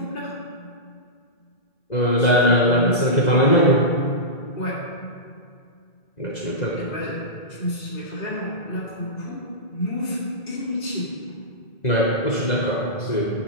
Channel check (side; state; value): right; late; 2.0 ms